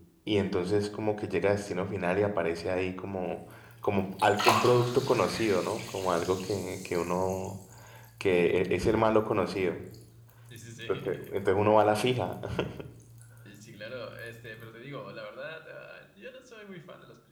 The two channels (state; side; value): identical; both; correlation 1.00